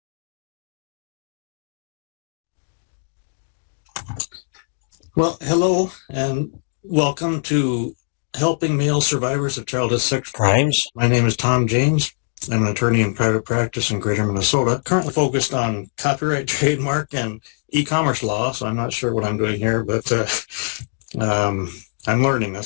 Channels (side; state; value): right; silent; digital silence